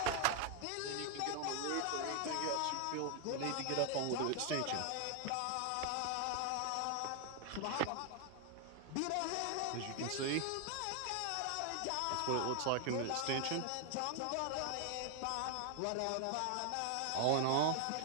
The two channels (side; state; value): both; different; correlation 0.00